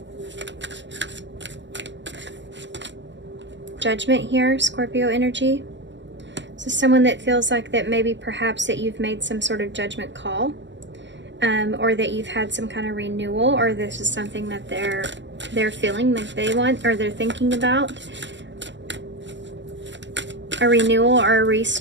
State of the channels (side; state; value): left; late; 0.53 ms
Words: Judgment here, Scorpio energy. So someone that feels like that maybe perhaps that you've made some sort of judgment call, or that you've had some kind of renewal, or this is something that they're feeling like they want, or they're thinking about. A renewal or a